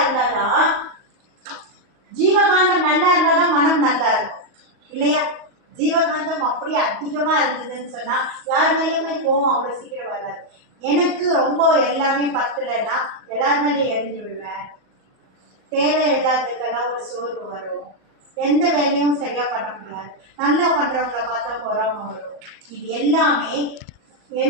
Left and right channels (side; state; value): left; late; 38 ms